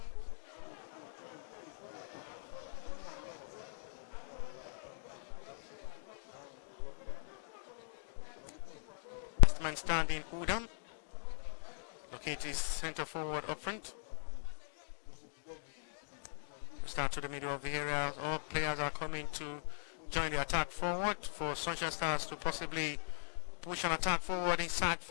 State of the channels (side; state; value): right; silent; digital silence